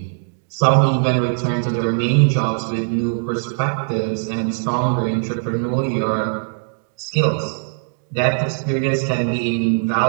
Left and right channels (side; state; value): left; silent; digital silence